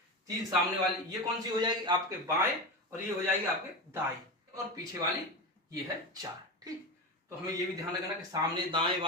3 सामने वाली। ये कौन सी हो जाएगी आपके बाएं, और ये हो जाएगी आपके दाएं, और पीछे वाली ये है 4। ठीक, तो हमें ये भी ध्यान रखना कि सामने दाएं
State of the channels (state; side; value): normal; both; correlation 0.20